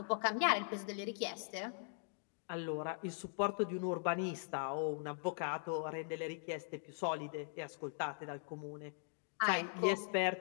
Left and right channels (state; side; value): silent; right; digital silence